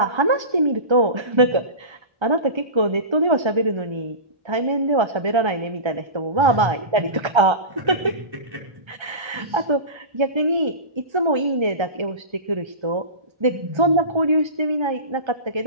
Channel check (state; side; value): late; left; 1.3 ms